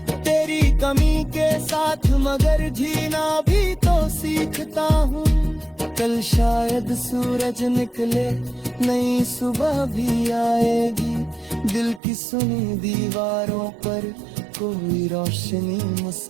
तेरी कमी के साथ, मगर जीना भी तो सीखता हूँ। कल शायद सूरज निकले, नई सुबह भी आएगी। दिल की सुनी दीवारों पर कोई रोशनी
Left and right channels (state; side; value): drops out; left; at 12.0 s